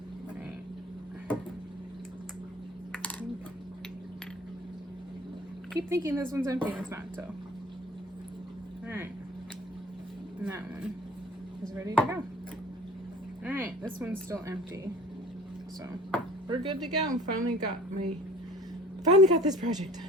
Keep thinking this one's empty, it's not, so. Alright. And that one is ready to go. Alright, this one's still empty. So we're good to go. Finally got this project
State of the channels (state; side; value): normal; both; correlation 0.46